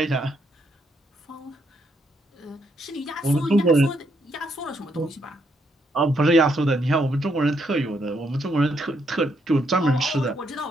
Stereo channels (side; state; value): both; normal; correlation 0.75